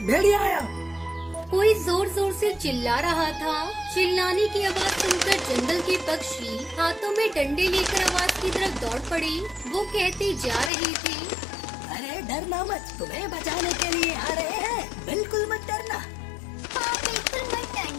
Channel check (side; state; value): right; drops out; at 10.7 s